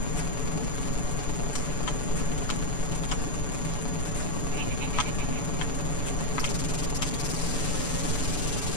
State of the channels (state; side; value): late; right; 6.9 ms